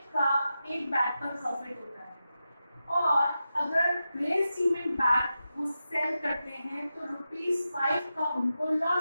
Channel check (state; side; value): inverted; both; correlation -0.90